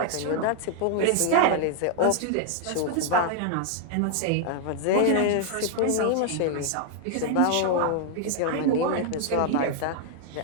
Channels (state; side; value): different; both; correlation 0.00